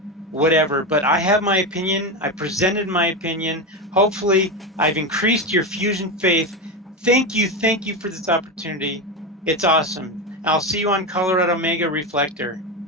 whatever, but I have my opinion. I presented my opinion. Hopefully, I've increased your Fusion faith. Thank you for this opportunity. It's awesome. I'll see you on Colorado Mega Reflector.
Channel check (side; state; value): both; normal; correlation 0.16